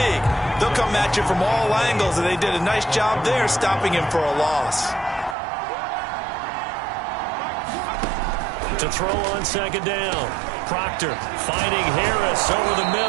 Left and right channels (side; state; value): left; drops out; at 5.4 s